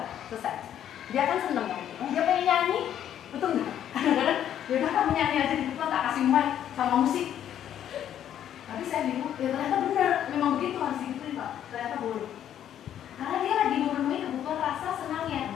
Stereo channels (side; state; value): right; quieter; 10.4 dB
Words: selesai. Dia kan seneng kan? Dia pengen nyanyi, betul nggak? Kadang-kadang, yaudah kamu nyanyi aja di depan, tak kasih mic sama musik. Tapi saya bingung, ya ternyata benar, memang begitu harus digituin Pak. Ternyata boleh. Karena dia lagi memenuhi kebutuhan rasa senangnya.